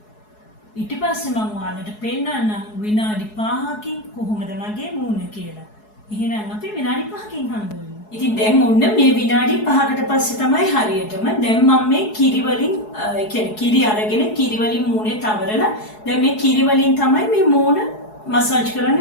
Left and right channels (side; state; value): right; late; 4.7 ms